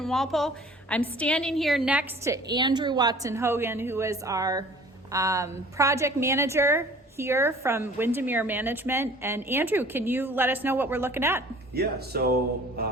Walpole. I'm standing here next to Andrew Watson-Hogan, who is our project manager here from Windermere Management. And Andrew, can you let us know what we're looking at? Yeah,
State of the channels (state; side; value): normal; both; correlation 0.49